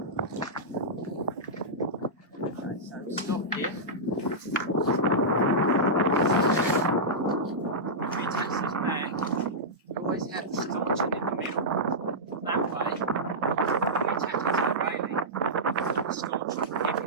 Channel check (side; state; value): both; normal; correlation -0.12